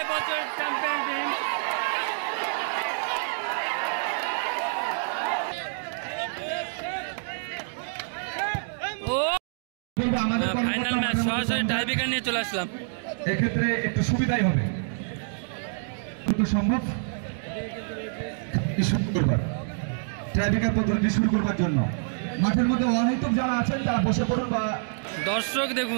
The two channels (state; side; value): silent; left; digital silence